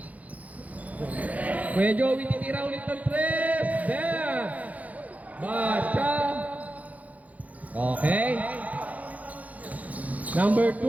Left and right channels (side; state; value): left; late; 0.073 ms